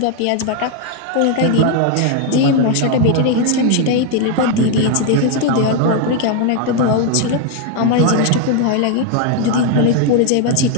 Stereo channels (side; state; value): both; different; correlation 0.01